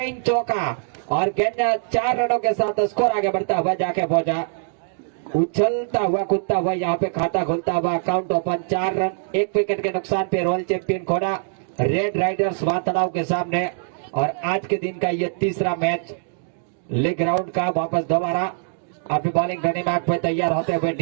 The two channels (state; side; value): silent; left; digital silence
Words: चौका और गेंद 4 रनों के साथ स्कोर आगे बढ़ता हुआ जाके पहुंचा, उछलता हुआ कूदता हुआ यहाँ पे खाता खुलता हुआ अकाउंट ओपन 4 रन 1 विकेट के नुकसान पे रॉयल चैंपियन खोड़ा रेड राइडर्स वातड़ाव के सामने। और आज के दिन का ये तीसरा मैच लीग राउंड का। वापस दोबारा अपनी बॉलिंग घड़ी बाग पे तैयार होते हुए